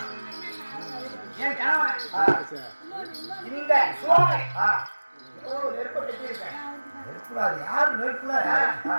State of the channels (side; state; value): both; inverted; correlation -1.00